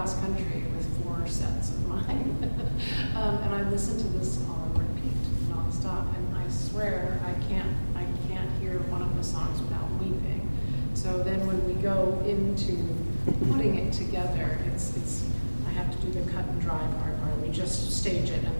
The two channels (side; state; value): both; inverted; correlation -1.00